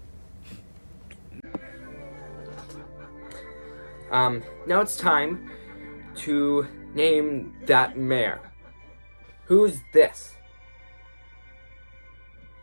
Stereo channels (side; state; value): both; inverted; correlation -1.00